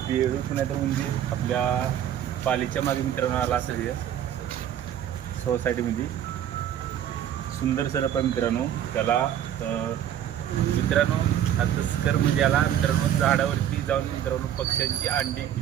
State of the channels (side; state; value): left; quieter; 10.6 dB